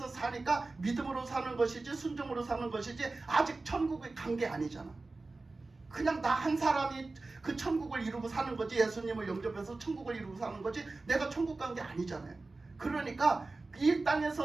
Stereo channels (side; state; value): left; quieter; 3.5 dB